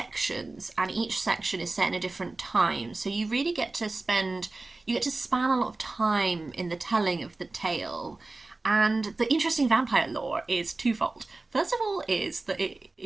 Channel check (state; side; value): quieter; left; 3.3 dB